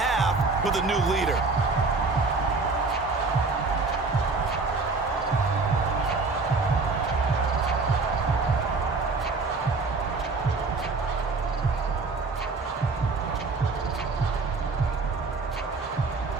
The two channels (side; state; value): left; quieter; 3.9 dB